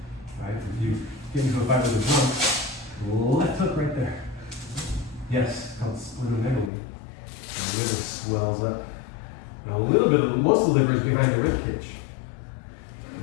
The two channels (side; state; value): right; drops out; at 6.7 s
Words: Right? If you get into a fight with a drunk, left hook right there. Yes, it's called splenomegaly. The liver swells up. Now, a little bit of most of the liver is behind the rib cage.